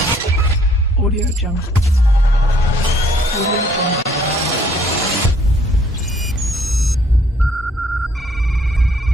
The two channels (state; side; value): normal; both; correlation 0.63